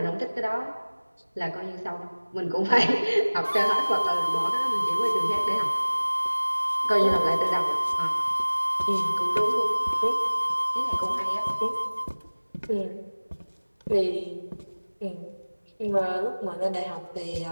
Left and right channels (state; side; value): inverted; both; correlation -1.00